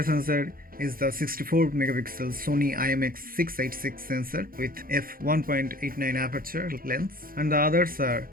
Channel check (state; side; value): late; left; 0.42 ms